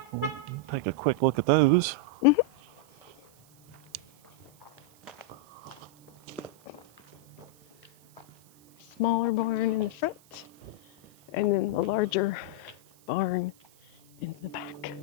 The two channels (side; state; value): right; noise; hiss, 29 dB below the sound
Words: We'll take a quick look at those. smaller barn in the front, and then the larger barn in the back.